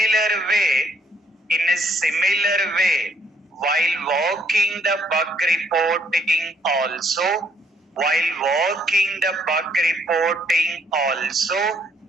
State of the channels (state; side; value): normal; both; correlation 0.67